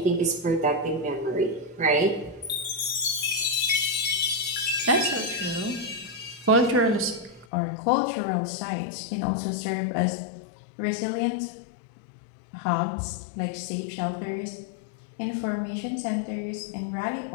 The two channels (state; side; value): drops out; right; at 7.5 s